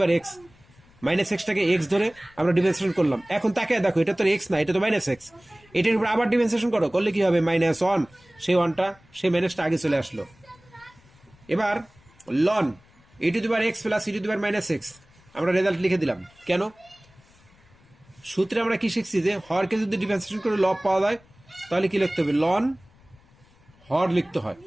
power x, minus এক্সটাকে এক্স ধরে আমরা ডিফারেন্সিয়েশন করলাম। এখন তাকে দেখো, এটা তো এক্স না, এটা তো মাইনাস এক্স, এটার উপর আবার ডিফারেন্সিয়েশন করো, করলে কি হবে -1, সেই 1টা সেই মাইনাসটা আগে চলে আসলো। এবার ln e to the power x plus e to the power minus x, আমরা রেজাল্ট লিখে দিলাম। কেন? সূত্রে আমরা কি শিখছি যে হরকে যদি ডিফারেন্সিয়েশন করে লব পাওয়া যায় তাহলে কি লিখতে হবে, লন হর লিখতে হয়।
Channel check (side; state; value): left; noise; rumble, 29 dB below the sound